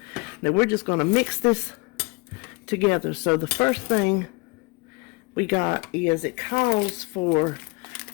Now we're just going to mix this together. So the first thing we got is it calls for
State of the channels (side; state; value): right; quieter; 27.2 dB